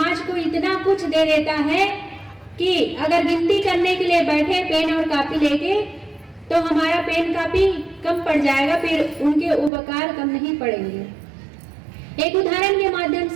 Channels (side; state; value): left; drops out; at 9.7 s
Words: को इतना कुछ दे देता है कि अगर गिनती करने के लिए बैठे पेन और कापी लेके, तो हमारा पेन कापी कम पड़ जाएगा, फिर उनके उपकार कम नहीं पड़ेंगे। एक उदाहरण के माध्यम